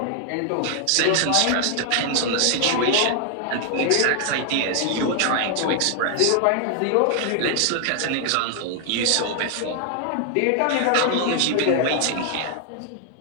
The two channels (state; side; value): different; both; correlation 0.00